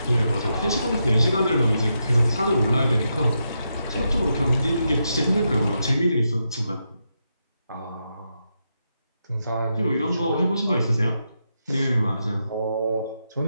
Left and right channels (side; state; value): both; inverted; correlation -0.84